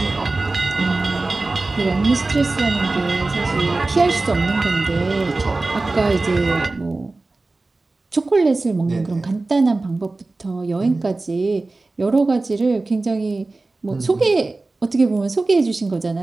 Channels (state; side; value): quieter; left; 3.3 dB